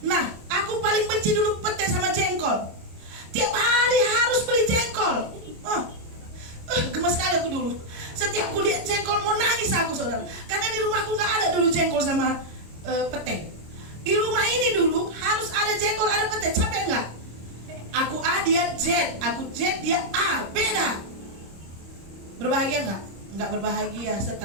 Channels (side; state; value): left; late; 26 ms